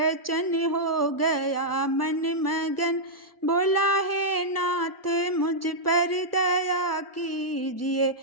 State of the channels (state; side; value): normal; both; correlation -0.08